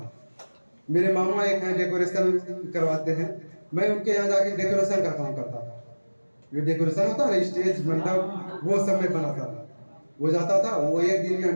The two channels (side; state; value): both; inverted; correlation -1.00